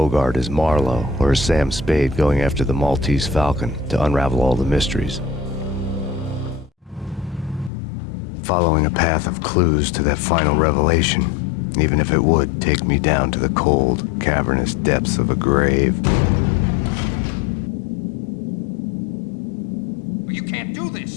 as Marlowe or as Sam Spade going after the Maltese Falcon to unravel all the mysteries. Following a path of clues to that final revelation, even if it would take me down to the cold, cavernous depths of a grave. You can't do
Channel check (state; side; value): drops out; right; at 7.7 s